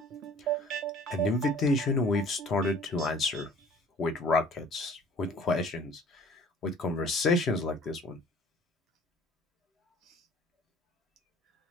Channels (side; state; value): both; normal; correlation 0.50